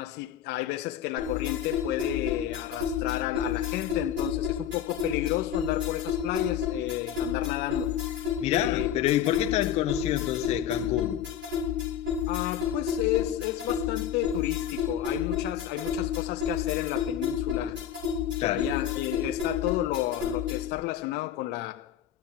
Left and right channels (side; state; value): right; quieter; 10.1 dB